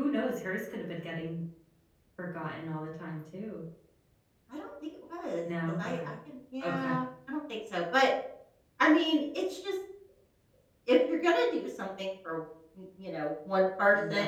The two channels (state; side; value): identical; both; correlation 1.00